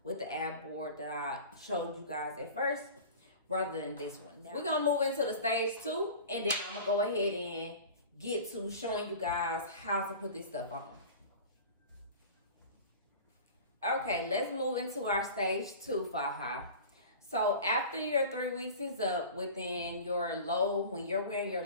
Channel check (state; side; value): inverted; both; correlation -0.37